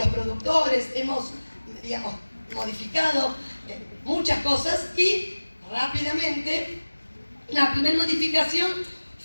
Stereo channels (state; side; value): inverted; both; correlation -1.00